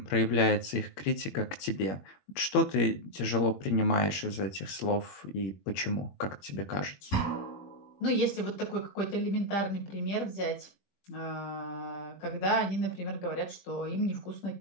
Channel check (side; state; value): right; late; 21 ms